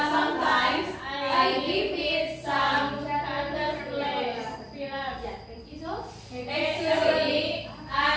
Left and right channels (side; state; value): both; identical; correlation 1.00